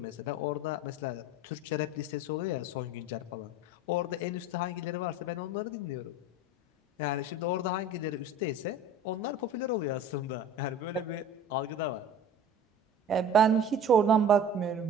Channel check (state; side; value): normal; both; correlation 0.40